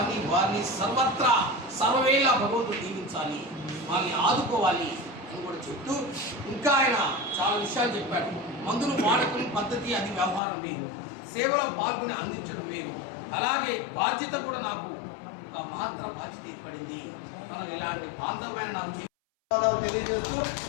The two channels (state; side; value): drops out; right; at 10.4 s